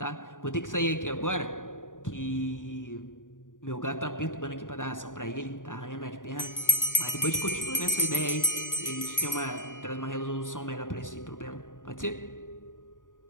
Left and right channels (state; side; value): late; right; 0.88 ms